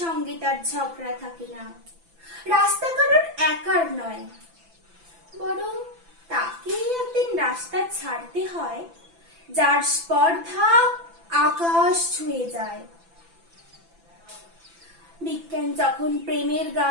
সঙ্গে তার ঝগড়া থাকে না। রাস্তা কারোর একার নয়, বরং তাকে একদিন রাস্তা ছাড়তে হয় যার স্পর্ধা আকাশ ছুঁয়ে যায়। বিজ্ঞান যখন প্রেমের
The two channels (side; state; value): left; late; 6.0 ms